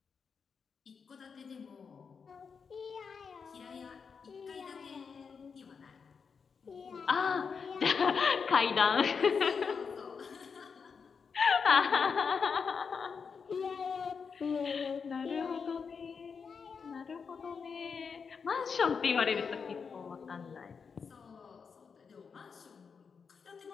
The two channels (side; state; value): right; quieter; 5.8 dB